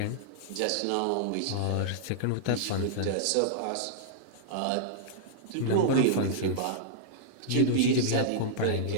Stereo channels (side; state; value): both; different; correlation -0.02